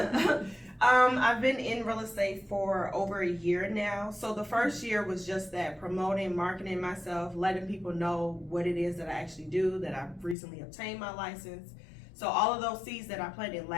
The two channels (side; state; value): right; drops out; at 10.4 s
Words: I've been in real estate for over a year now. So the first year was just that, promoting, marketing myself, letting people know what it is that I actually do, that I've recently obtained my license. So all of those seeds that I planted